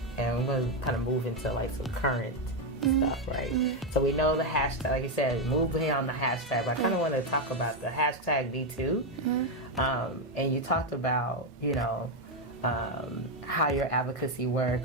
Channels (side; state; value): both; normal; correlation 0.05